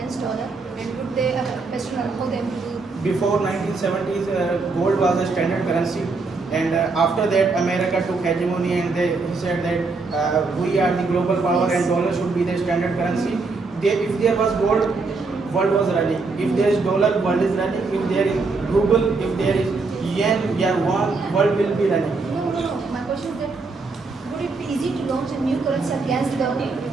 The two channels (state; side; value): quieter; left; 4.0 dB